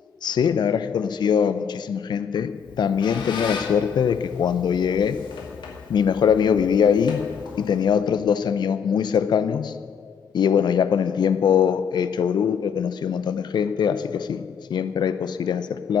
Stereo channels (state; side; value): quieter; right; 7.3 dB